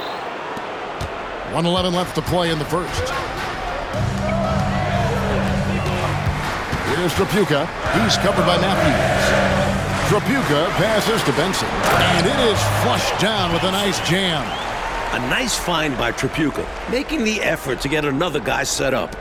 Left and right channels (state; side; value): identical; both; correlation 1.00